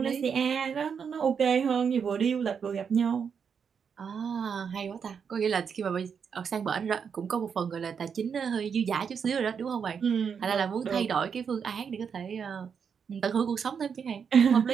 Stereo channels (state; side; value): quieter; left; 6.7 dB